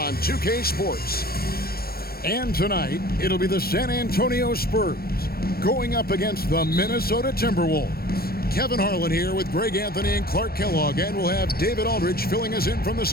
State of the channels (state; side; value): late; right; 0.44 ms